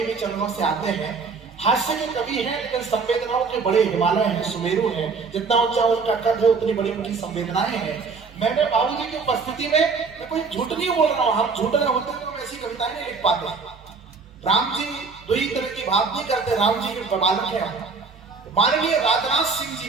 चैनलों से आते हैं। हास्य के कवि हैं लेकिन संवेदनाओं के बड़े हिमालय हैं, सुमेरु हैं। जितना ऊंचा उनका कद है उतनी बड़ी उनकी संवेदनाएं हैं। मैंने बाबूजी की उपस्थिति में, मैं कोई झूठ नहीं बोल रहा हूँ, हम झूठ रहे होते तो हम ऐसी कविताएं नहीं लिख पाते। राम जी दो ही तरह की बात नहीं करते, राम जी के बालक हैं। माननीय राजनाथ सिंह जी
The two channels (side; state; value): left; quieter; 4.8 dB